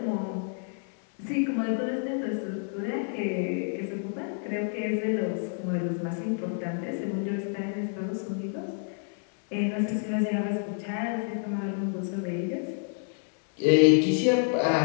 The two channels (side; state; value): right; silent; 59 dB below the other